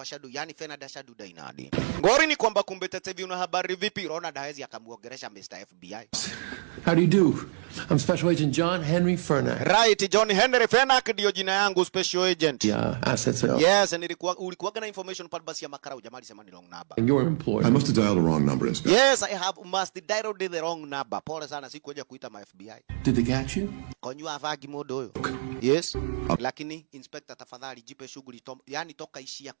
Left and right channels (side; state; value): left; silent; digital silence